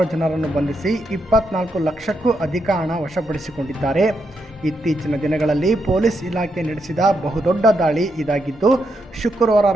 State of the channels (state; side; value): normal; both; correlation 0.81